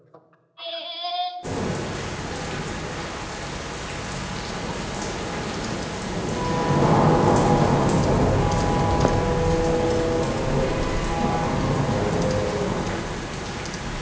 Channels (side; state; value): both; identical; correlation 1.00